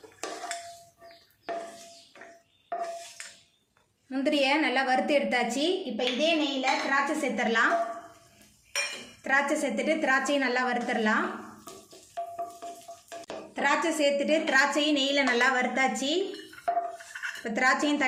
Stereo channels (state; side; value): identical; both; correlation 1.00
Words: முந்திரியை நல்லா வறுத்து எடுத்தாச்சு இப்போ இதே நெய்யில் திராட்சை சேர்த்துடலாம் திராட்சை சேர்த்துட்டு திராட்சையும் நல்லா வறுத்துடலாம் திராட்சை சேர்த்துட்டு திராட்சையும் நெய்யில் நல்லா வறுத்தாச்சு இப்போ திராட்சையும்